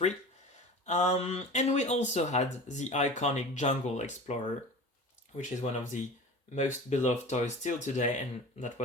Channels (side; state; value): both; normal; correlation 0.36